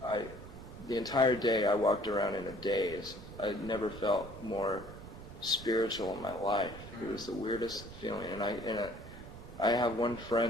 the entire day I walked around in a daze. I never felt more spiritual in my life. It was the weirdest feeling, and I have one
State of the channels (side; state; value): right; noise; rumble, 14 dB below the sound